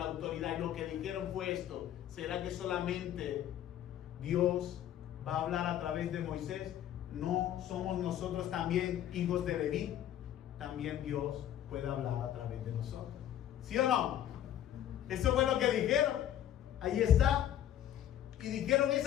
autoridad, y lo que dijeron fue esto: ¿será que solamente Dios va a hablar a través de Moisés? ¿No somos nosotros también hijos de Leví? También Dios puede hablar a través de nosotros. ¿Sí o no? Eso fue lo que dijeron. Ahí está. Y dijeron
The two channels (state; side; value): quieter; right; 11.3 dB